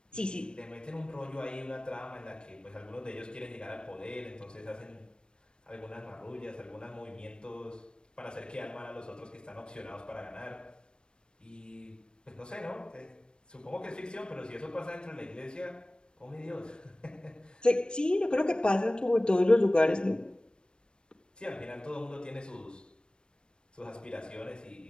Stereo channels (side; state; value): right; late; 0.053 ms